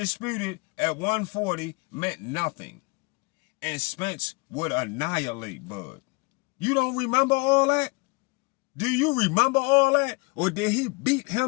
at 140 meant nothing. And Spence would annihilate Bud. You don't remember all that? Do you remember all that? Or did he beat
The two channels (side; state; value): right; quieter; 29.6 dB